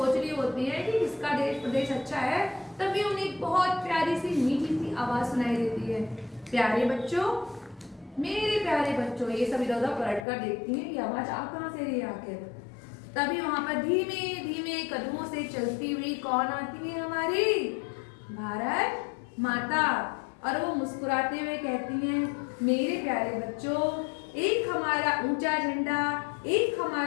रही होती है कि किसका प्रदेश अच्छा है, तभी उन्हें बहुत प्यारी सी मीठी सी आवाज सुनाई देती है। प्यारे बच्चों, मेरे प्यारे बच्चों, ये सब इधर उधर पलट कर देखती हैं कि आवाज आ कहाँ से रही है आखिर। तभी वहां पर धीमे धीमे कदमों से चलती हुई कौन आती है? हमारी भारत माता। और वो मुस्कुराते हुए कहती हैं, मेरे प्यारे बच्चों, एक हमारा ऊंचा झंडा, एक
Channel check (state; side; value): drops out; right; at 10.2 s